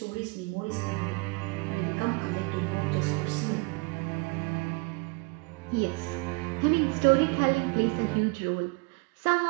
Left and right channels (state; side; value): quieter; left; 28.6 dB